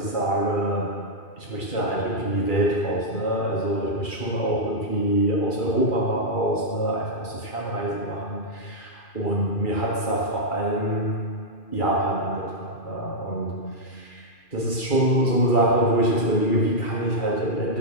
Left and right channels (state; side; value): late; right; 2.3 ms